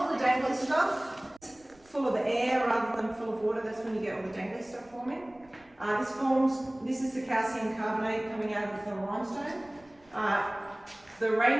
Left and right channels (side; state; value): right; noise; rumble, 29 dB below the sound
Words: the dangly stuff, full of air rather than full of water, that's when you get all the dangly stuff forming. This is the calcium carbonate coming out of the limestone. The